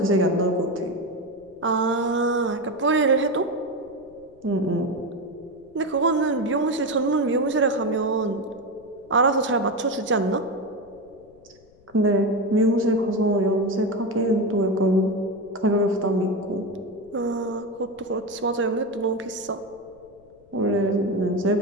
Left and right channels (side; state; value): left; noise; rumble, 29 dB below the sound